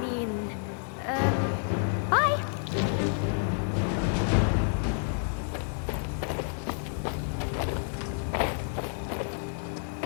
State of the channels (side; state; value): right; silent; 58 dB below the other